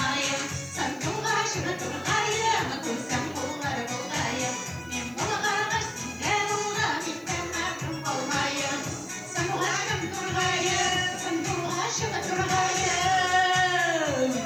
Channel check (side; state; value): right; noise; hiss, 27 dB below the sound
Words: Sen tuğaşıp turgayım, kursam kullara bulayım. Kim bulgağa sinde bulgar, inden mahrum olmayım. Sen tuğaşıp turgayım, sen tuğaşıp turgayım.